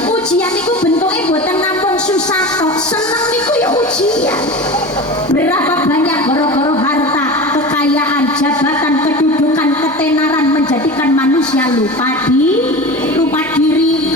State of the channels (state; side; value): normal; both; correlation 0.31